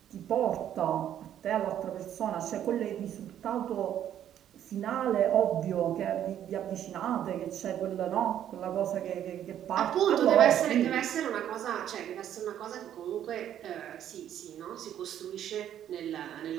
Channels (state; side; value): quieter; left; 10.6 dB